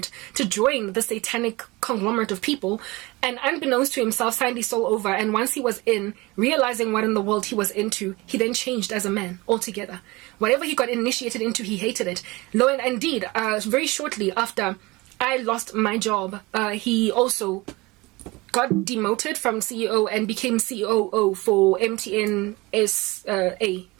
to join the satanic conglomerate of people, and unbeknownst to himself signed his soul over. And once he was in, realizing what in the world he was into, he then changed as a man altogether. Whatever he got initiated into, he hated it. Lo and indeed, very shortly after I lost my job, he also got demoted from CEO and became COO for MTN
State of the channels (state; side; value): quieter; left; 22.8 dB